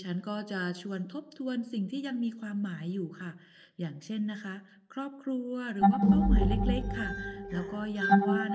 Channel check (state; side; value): identical; both; correlation 1.00